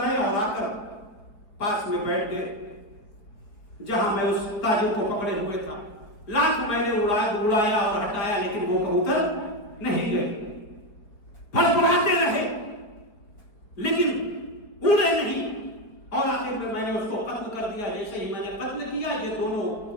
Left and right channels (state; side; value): late; right; 4.9 ms